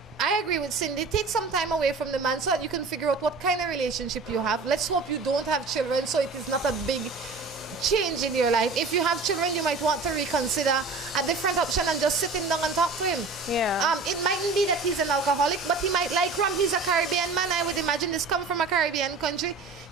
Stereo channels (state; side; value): quieter; left; 4.1 dB